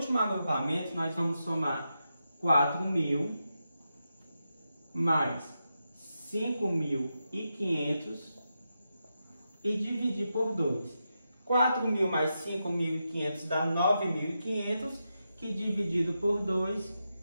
agrupamento, nós vamos somar 4.000 mais 5.500 e dividir por 2. 4.000 mais 5.500 dá 9.500, que dividido por 2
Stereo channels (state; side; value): inverted; both; correlation -0.87